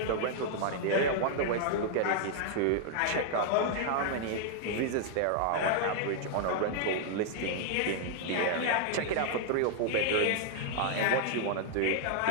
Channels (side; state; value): both; different; correlation 0.00